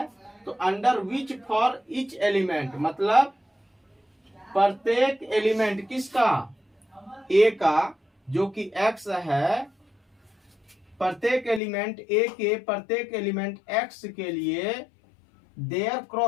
तो under which for each element, मतलब प्रत्येक एलिमेंट किसका, a का, जो कि x है, प्रत्येक एलिमेंट a के प्रत्येक एलिमेंट x के लिए देयर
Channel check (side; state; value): right; drops out; at 11.6 s